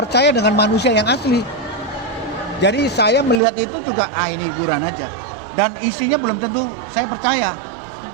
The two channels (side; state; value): left; drops out; at 3.4 s